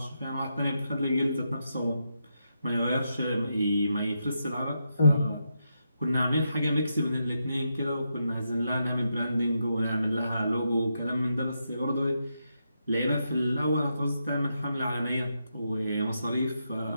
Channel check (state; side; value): inverted; both; correlation -0.83